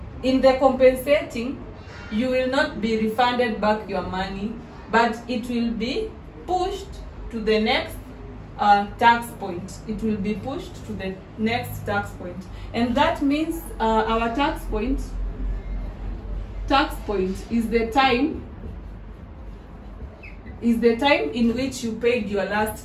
in the compensating, you will not be refunded back your money, but it will be pushed to the next tax point. It will be pushed to the next tax point, and that means our tax point is the time in which you paid your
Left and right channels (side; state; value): both; identical; correlation 1.00